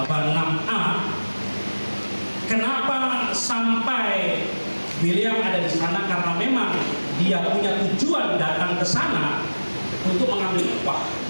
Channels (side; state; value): both; inverted; correlation -1.00